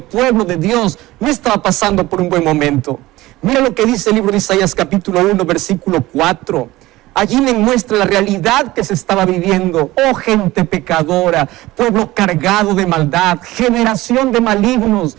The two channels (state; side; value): quieter; left; 18.1 dB